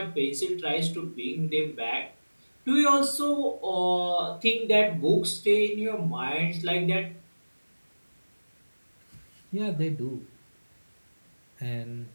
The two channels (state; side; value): inverted; both; correlation -1.00